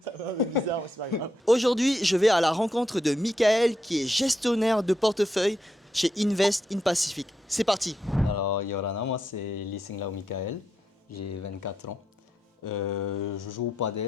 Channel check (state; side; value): normal; both; correlation 0.81